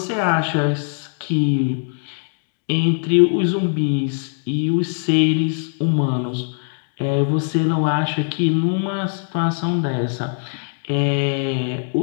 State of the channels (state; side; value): silent; right; digital silence